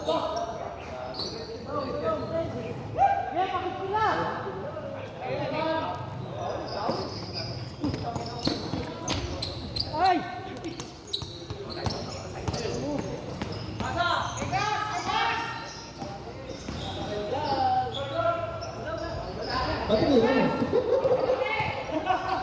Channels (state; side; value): identical; both; correlation 1.00